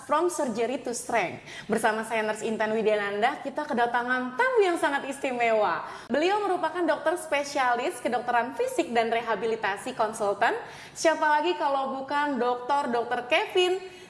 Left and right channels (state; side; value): identical; both; correlation 1.00